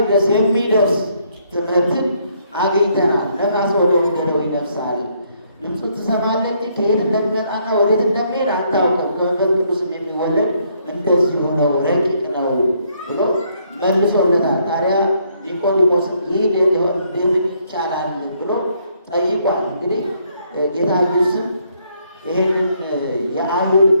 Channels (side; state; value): both; inverted; correlation -0.70